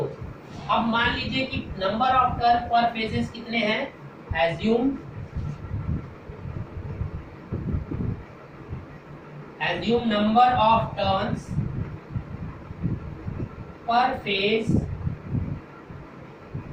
अब मान लीजिए कि number of turn per phases कितने हैं, assume number of turns per phase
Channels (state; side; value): identical; both; correlation 1.00